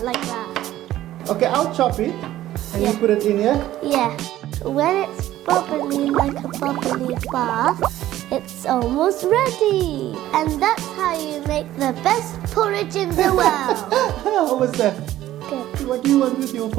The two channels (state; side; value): quieter; left; 14.0 dB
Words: like that. Okay, I'll chop it. And Yeah. you put it in here? Yeah. When it's bubbly like a bubbly bath, it's almost ready. And that's how you make the best porridge in the world. How was that? Good. What do you want with your